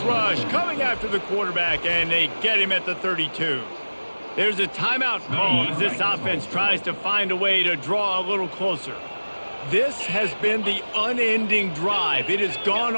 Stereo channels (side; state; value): both; inverted; correlation -1.00